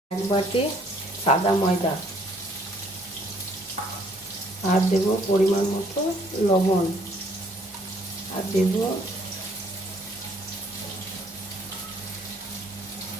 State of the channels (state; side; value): normal; both; correlation 0.63